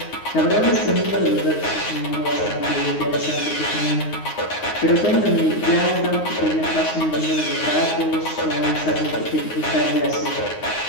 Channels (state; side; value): late; right; 9.6 ms